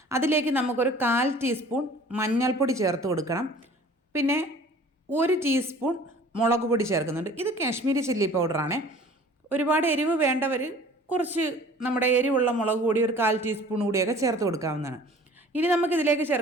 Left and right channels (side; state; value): both; normal; correlation 0.48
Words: അതിലേക്ക് നമുക്കൊരു 1/4 ടീസ്പൂൺ മഞ്ഞൾപ്പൊടി ചേർത്ത് കൊടുക്കണം. പിന്നെ 1 ടീസ്പൂൺ മുളക് പൊടി ചേർക്കുന്നുണ്ട്. ഇത് കാശ്മീരി ചില്ലി പൗഡറാണ്. ഒരുപാട് എരിവ് വേണ്ടവർ കുറച്ച് നമ്മുടെ എരിവുള്ള മുളക് പൊടി ഒരു 1/4 ടീസ്പൂൺ കൂടിയൊക്കെ ചേർത്ത് കൊടുക്കാവുന്നതാണ്. ഇനി നമുക്കിതിലേക്ക്